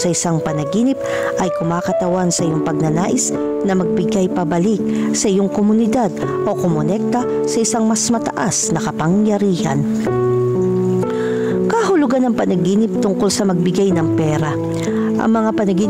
isang panaginip ay kumakatawan sa iyong pagnanais na magbigay pabalik sa iyong komunidad o kumonekta sa isang mas mataas na kapangyarihan. Kahulugan ng panaginip tungkol sa magbigay ng pera. Ang mga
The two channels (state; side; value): identical; both; correlation 1.00